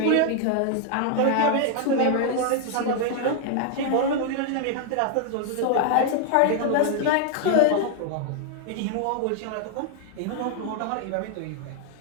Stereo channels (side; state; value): both; different; correlation 0.00